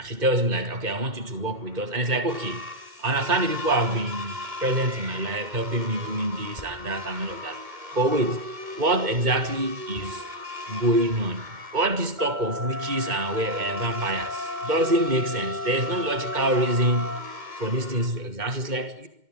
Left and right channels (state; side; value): late; left; 2.1 ms